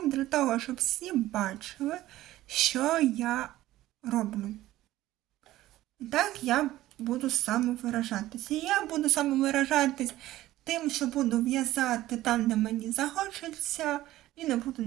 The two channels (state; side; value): quieter; left; 15.4 dB